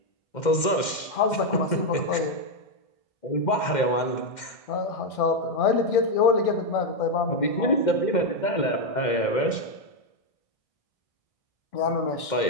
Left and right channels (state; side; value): late; right; 2.1 ms